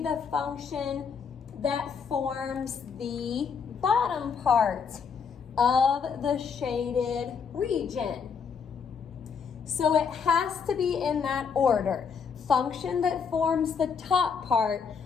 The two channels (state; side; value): quieter; right; 6.2 dB